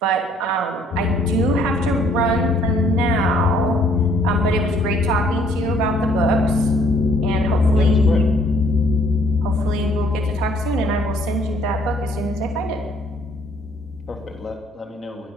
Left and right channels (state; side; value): normal; both; correlation 0.62